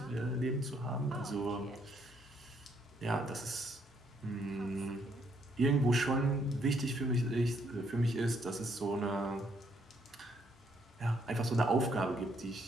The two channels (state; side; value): normal; both; correlation 0.71